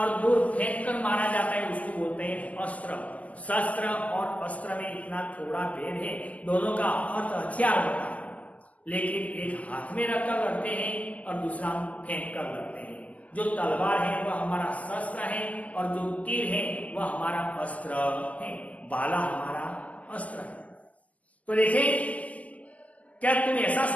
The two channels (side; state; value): right; late; 0.073 ms